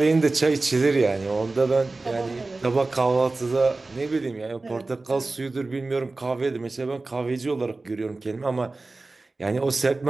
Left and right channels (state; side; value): quieter; left; 3.4 dB